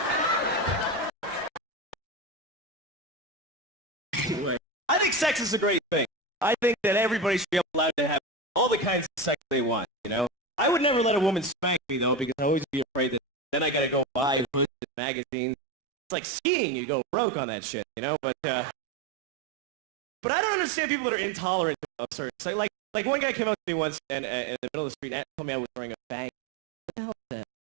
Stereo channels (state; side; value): drops out; left; at 14.7 s